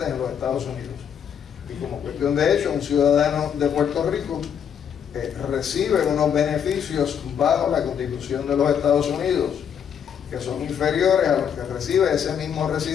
en los Estados Unidos. Y como cuestión de hecho, un ciudadano de Puerto Rico recibe unos beneficios bajo la Constitución de los Estados Unidos, que son inferiores a los que recibe ese mismo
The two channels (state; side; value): quieter; right; 8.2 dB